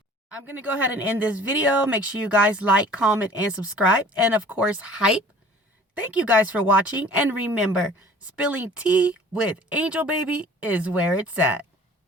I'm going to go ahead and end this video. Make sure you guys like, comment, and subscribe. And of course, hype. Thank you guys for watching. And remember, spilling tea with Angel Baby is where it's at.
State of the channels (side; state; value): both; normal; correlation 0.48